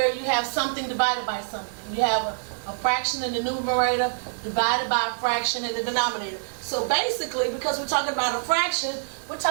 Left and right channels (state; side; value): silent; left; digital silence